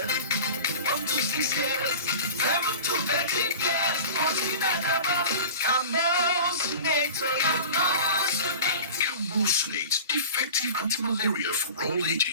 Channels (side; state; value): both; inverted; correlation -0.36